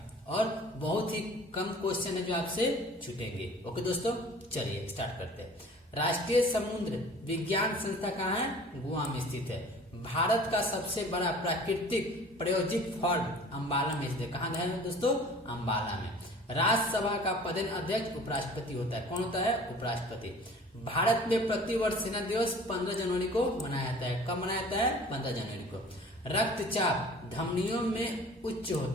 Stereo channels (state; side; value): normal; both; correlation 0.46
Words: और बहुत ही कम क्वेश्चन है जो आपसे छूटेंगे। ओके दोस्तों, चलिए स्टार्ट करते हैं। राष्ट्रीय समुद्र विज्ञान संस्था कहाँ है? गोवा में स्थित है। भारत का सबसे बड़ा प्राकृतिक प्रायोजिक फॉर्म अम्बाला में स्थित है। कहाँ है दोस्तों? अम्बाला में। राज्यसभा का पदेन अध्यक्ष उपराष्ट्रपति होता है। कौन होता है? उपराष्ट्रपति। भारत में प्रतिवर्ष सेना दिवस 15 जनवरी को मनाया जाता है। कब मनाया जाता है? 15 जनवरी को। रक्तचाप धमनियों में उच्च